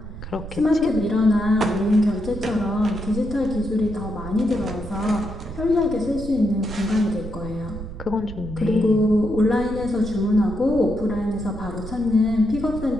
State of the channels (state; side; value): noise; right; rumble, 10 dB below the sound